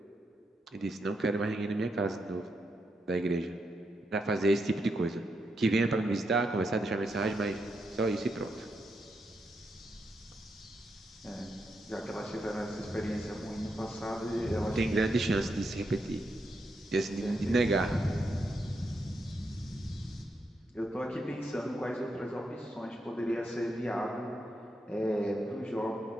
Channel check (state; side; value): normal; both; correlation 0.82